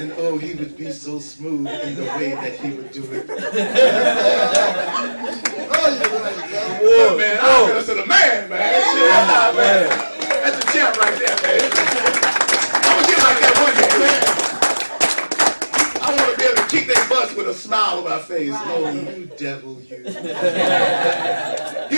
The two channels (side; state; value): both; inverted; correlation -1.00